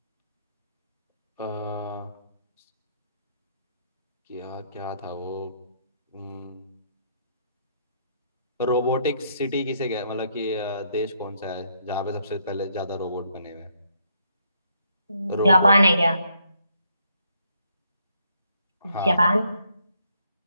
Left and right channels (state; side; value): inverted; both; correlation -0.72